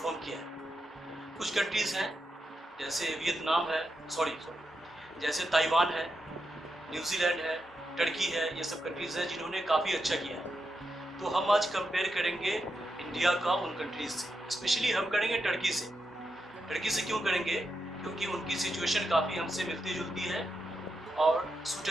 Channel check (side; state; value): both; normal; correlation 0.85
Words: किया है। कुछ कंट्रीज़ हैं जैसे वियतनाम है, जैसे ताइवान है, न्यूजीलैंड है, टर्की है, ये सब कंट्रीज़ हैं जिन्होंने काफ़ी अच्छा किया है। तो हम आज कंपेयर करेंगे इंडिया का उन कंट्रीज़ से। स्पेशली हम करेंगे टर्की से। टर्की से क्यों करेंगे? क्योंकि उनकी सिचुएशन काफ़ी हमसे मिलती-जुलती है और